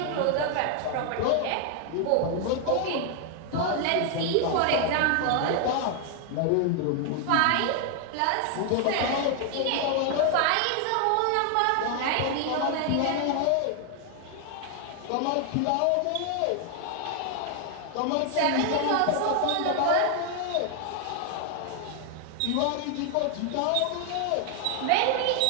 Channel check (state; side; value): different; both; correlation 0.00